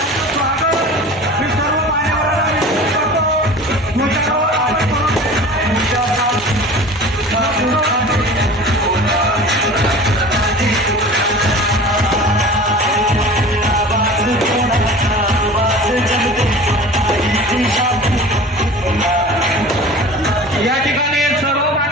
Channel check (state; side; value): normal; both; correlation 0.39